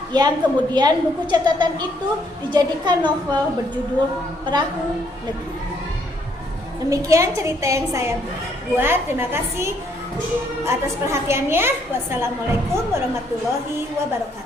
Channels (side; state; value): both; normal; correlation 0.69